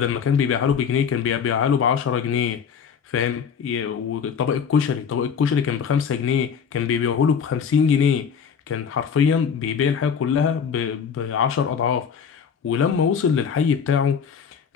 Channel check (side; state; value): right; quieter; 6.9 dB